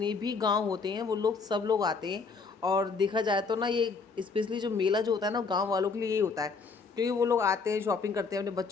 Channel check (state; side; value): quieter; right; 4.7 dB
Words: भी गांव होते हैं वो लोग सब लोग आते हैं। और देखा जाए तो ना ये स्पेशली जो मेला जो होता है ना गांव वालों के लिए यही होता है, क्योंकि वो लोग आते हैं शॉपिंग करते हैं अपने